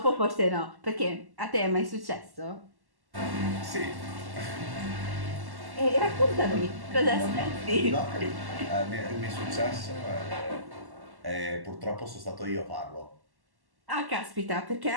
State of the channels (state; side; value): late; left; 1.1 ms